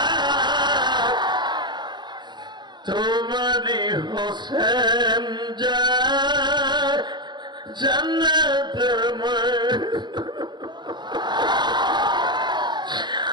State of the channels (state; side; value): late; left; 0.21 ms